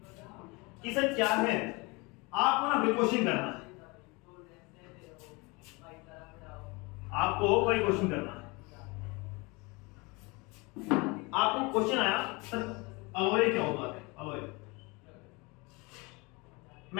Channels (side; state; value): right; quieter; 26.7 dB